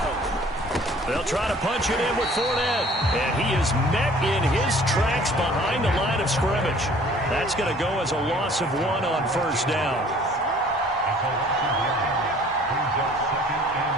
They'll try to punch it in with Fournette. And he is met in his tracks behind the line of scrimmage. That's going to go as a loss of 1 on 1st down.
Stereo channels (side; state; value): both; normal; correlation 0.53